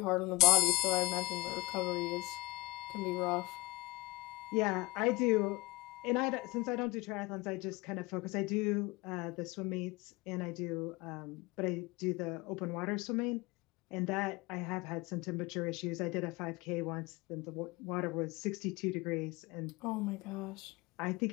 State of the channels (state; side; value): quieter; right; 22.5 dB